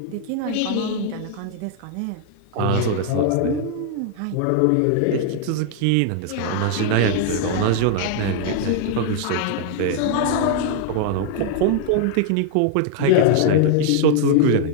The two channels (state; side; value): different; both; correlation 0.00